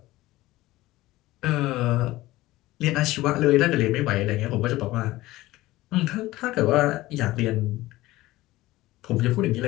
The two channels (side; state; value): right; quieter; 17.7 dB